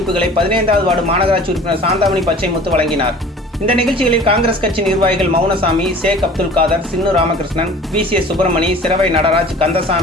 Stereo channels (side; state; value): both; normal; correlation 0.44